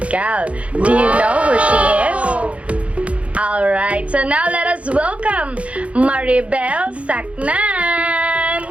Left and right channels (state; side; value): late; left; 0.063 ms